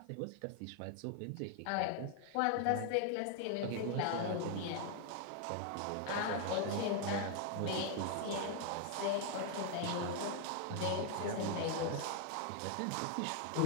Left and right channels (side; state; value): both; different; correlation 0.00